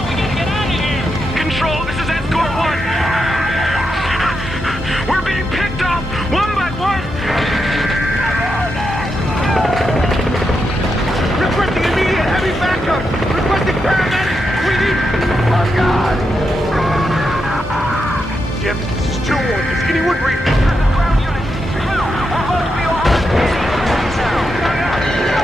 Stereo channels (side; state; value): both; normal; correlation 0.85